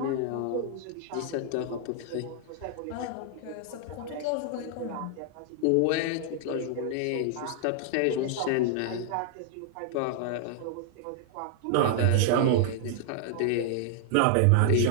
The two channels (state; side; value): different; both; correlation -0.01